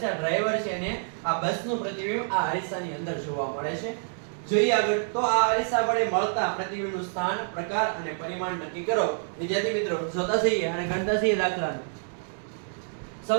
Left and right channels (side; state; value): left; silent; digital silence